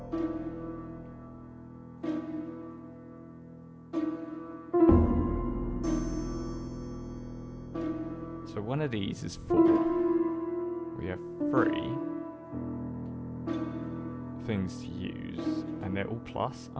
So one of these is 4. We have 3 things to use, and they're all plus,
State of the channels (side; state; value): both; identical; correlation 1.00